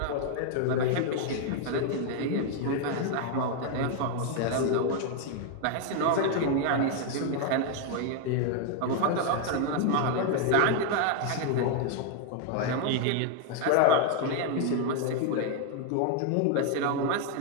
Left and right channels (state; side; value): different; both; correlation 0.00